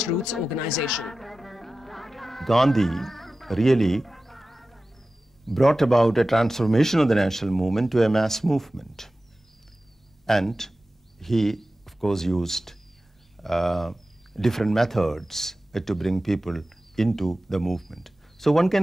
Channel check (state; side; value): normal; both; correlation 0.95